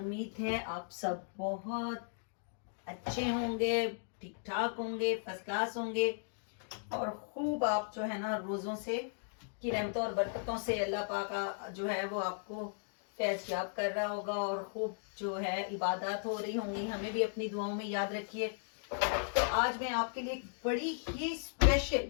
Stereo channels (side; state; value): right; silent; digital silence